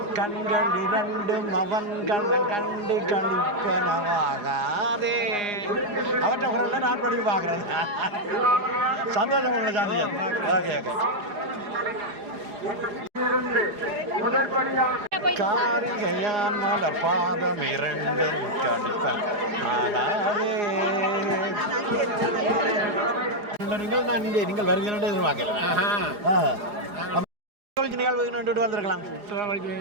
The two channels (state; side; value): late; left; 4.8 ms